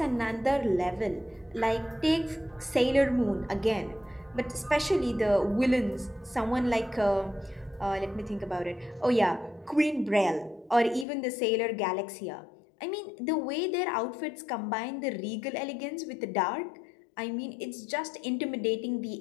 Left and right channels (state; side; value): drops out; right; at 11.1 s